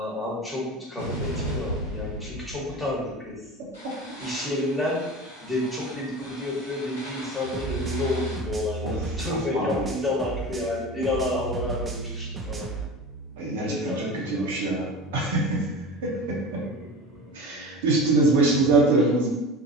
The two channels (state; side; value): normal; both; correlation 0.32